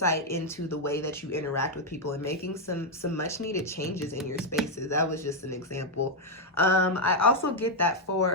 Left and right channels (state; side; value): normal; both; correlation 0.01